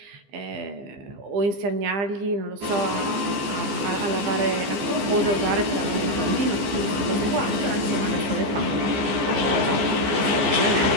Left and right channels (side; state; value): left; late; 15 ms